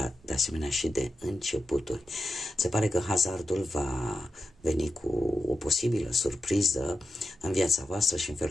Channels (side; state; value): both; normal; correlation 0.90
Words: de asemenea și de începuturi. Se pare că hazardul va veni cu o posibilă surpriză în viața voastră și în